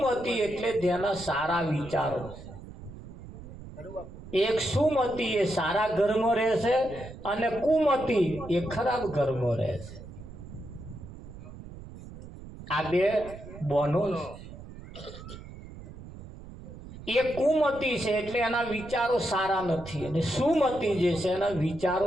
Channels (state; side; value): noise; right; rumble, 14 dB below the sound